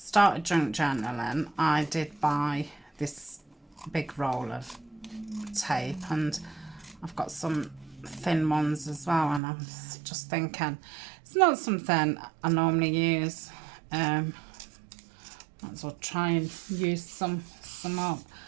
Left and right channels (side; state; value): left; drops out; at 9.4 s